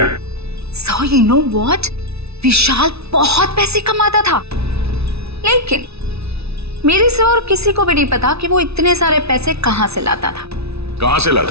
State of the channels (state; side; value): late; left; 0.79 ms